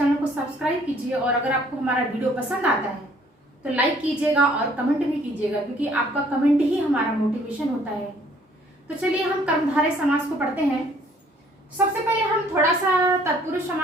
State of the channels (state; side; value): normal; both; correlation 0.60